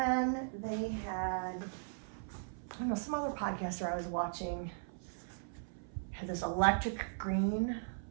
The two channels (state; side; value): silent; left; 52 dB below the other